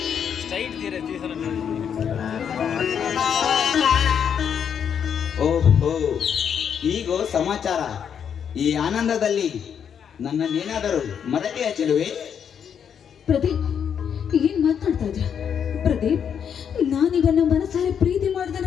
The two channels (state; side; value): quieter; right; 7.9 dB